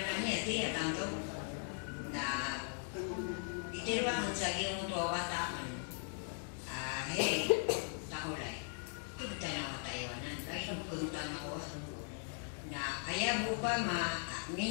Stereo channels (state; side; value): silent; right; 52 dB below the other